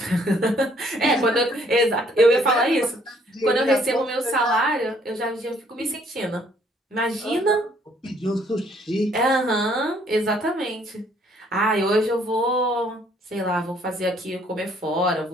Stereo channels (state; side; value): normal; both; correlation 0.64